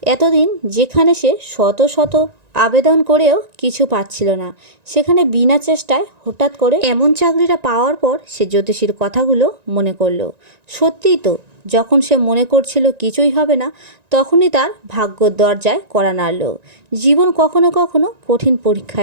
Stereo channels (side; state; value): left; late; 1.9 ms